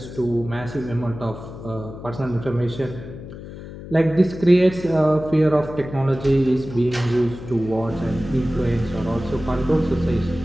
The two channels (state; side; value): noise; left; hum, 13 dB below the sound